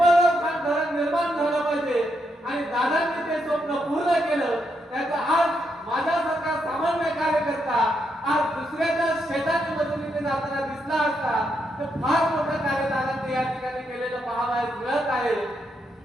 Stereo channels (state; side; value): normal; both; correlation 0.80